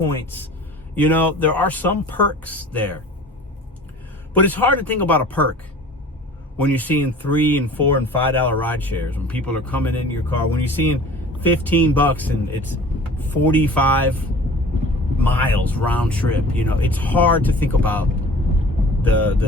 There are some perks there. But it's hard to think about a perk when you're seeing $3 and $4 and $5 ride shares, when people are coming in your car, when you're seeing $15 and it's 45 miles round trip. It's hard to think about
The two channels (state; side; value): normal; both; correlation 0.44